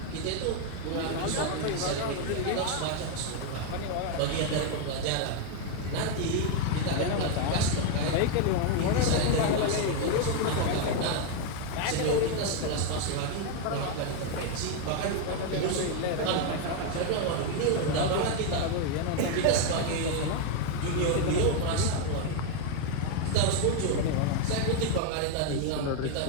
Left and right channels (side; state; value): both; different; correlation 0.01